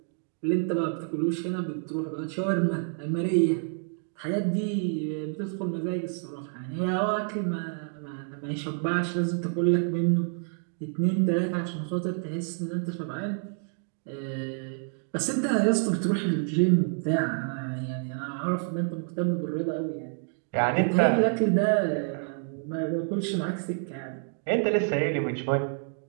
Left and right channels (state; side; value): silent; left; 59 dB below the other